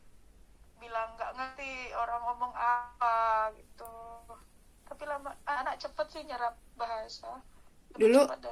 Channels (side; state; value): both; identical; correlation 1.00